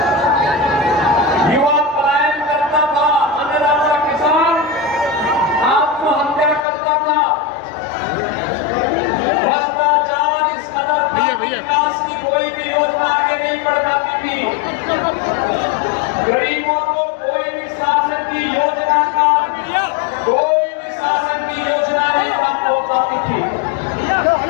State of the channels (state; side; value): drops out; right; at 6.6 s